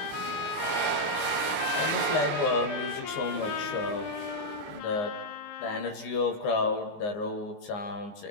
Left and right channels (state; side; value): late; right; 19 ms